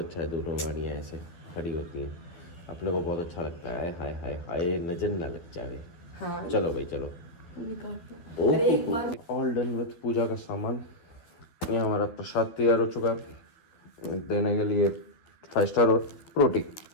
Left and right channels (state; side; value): late; right; 12 ms